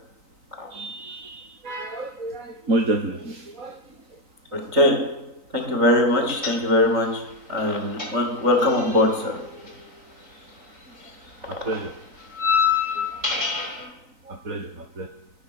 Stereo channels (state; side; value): late; left; 3.9 ms